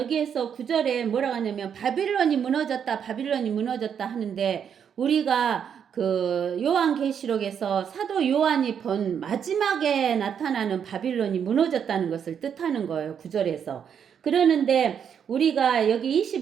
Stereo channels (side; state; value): left; quieter; 7.9 dB